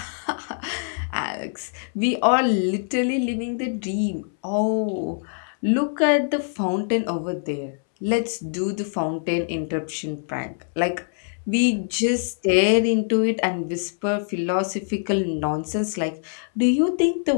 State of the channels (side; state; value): right; silent; 63 dB below the other